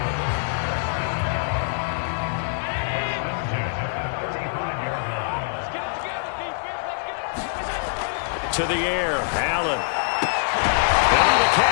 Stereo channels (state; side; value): silent; right; digital silence